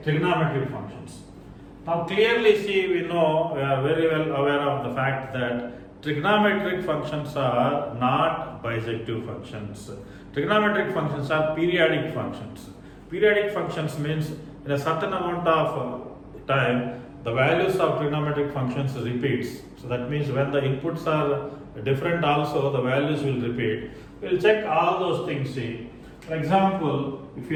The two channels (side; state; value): both; identical; correlation 1.00